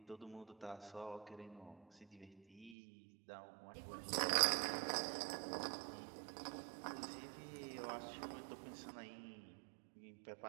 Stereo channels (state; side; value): drops out; left; at 2.8 s